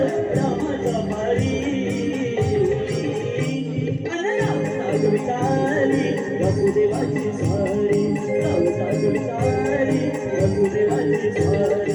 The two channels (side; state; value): both; identical; correlation 1.00